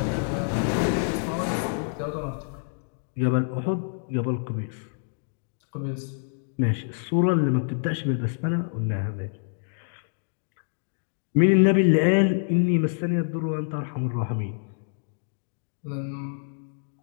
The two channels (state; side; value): silent; right; digital silence